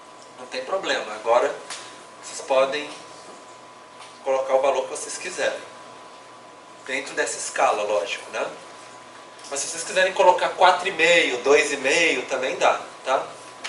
Não tem problema. Agora vocês podem colocar o valor que vocês quiserem. Dentro dessa escala, lógico, né? Mas se vocês quiserem colocar 4,5, 2,5, também dá, tá?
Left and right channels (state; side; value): identical; both; correlation 1.00